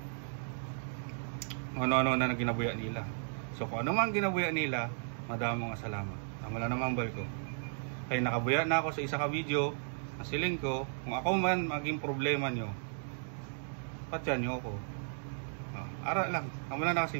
Ano-ano na ginabuya nila. So kung ano man ginabuya nila, madamo nga salamat. Wala namang bal ko. Kay nakabuya na ako sa isa ka video, nasiling ko, kung ako man maging problema nyo, patyan nyo ako. Ara lang, wala na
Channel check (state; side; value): silent; left; digital silence